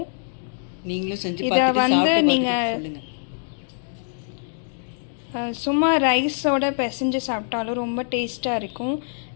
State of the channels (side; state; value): right; silent; digital silence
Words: நீங்களும் செஞ்சு இதை நீங்கள் சும்மா ரைஸோட பிசைஞ்சு சாப்பிட்டாலும் ரொம்ப டேஸ்ட்டாக இருக்கும்.